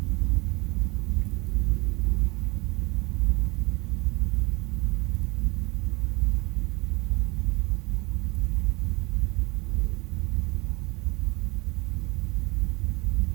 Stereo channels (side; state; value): left; quieter; 26.2 dB